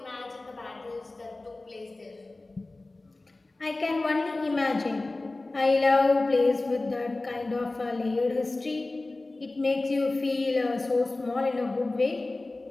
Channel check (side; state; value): right; quieter; 3.1 dB